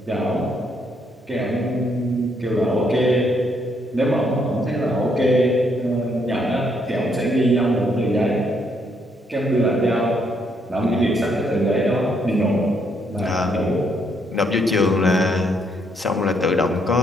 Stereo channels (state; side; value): normal; both; correlation 0.73